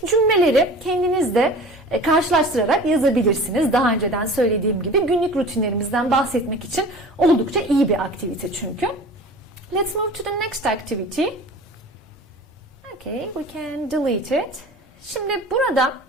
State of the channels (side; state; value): both; normal; correlation 0.40